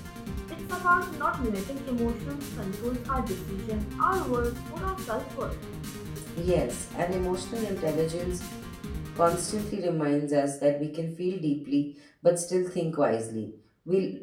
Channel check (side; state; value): both; identical; correlation 1.00